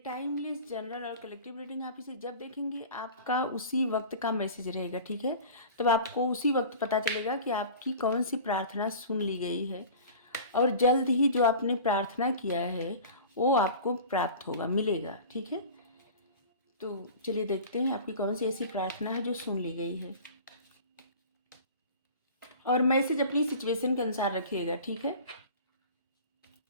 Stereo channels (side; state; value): both; inverted; correlation -0.39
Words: टाइमलेस जनरल और कलेक्टिव रीडिंग, आप इसे जब देखेंगे आपका उसी वक्त का मैसेज रहेगा, ठीक है। तब आपको उसी वक्त पता चलेगा कि आपकी कौन सी प्रार्थना सुन ली गई है और जल्द ही जो आपने प्रार्थना किया है वो आपको प्राप्त होगा, मिलेगा, ठीक है। तो चलिए देखते हैं आपकी कौन सी ऐसी प्रार्थना है जो सुन ली गई है, और मैसेज अपनी सिचुएशन के अनुसार रखिएगा, ठीक है।